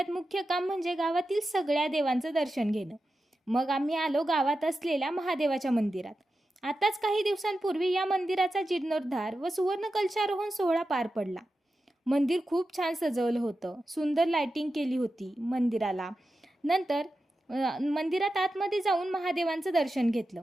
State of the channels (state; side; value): normal; both; correlation 0.91